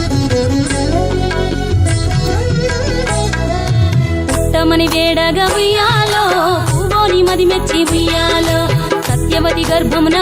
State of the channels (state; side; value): identical; both; correlation 1.00